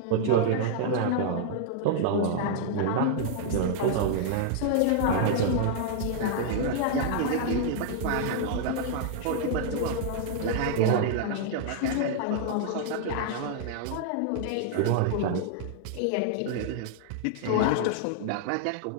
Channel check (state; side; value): different; both; correlation -0.01